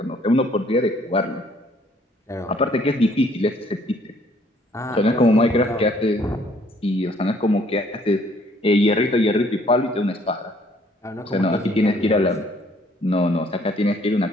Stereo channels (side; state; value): both; normal; correlation 0.62